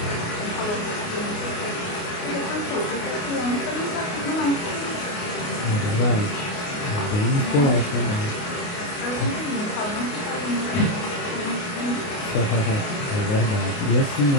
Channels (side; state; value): right; late; 28 ms